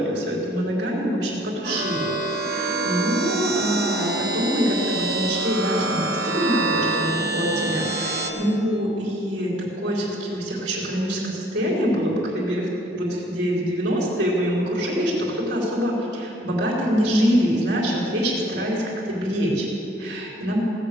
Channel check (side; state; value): both; normal; correlation 0.55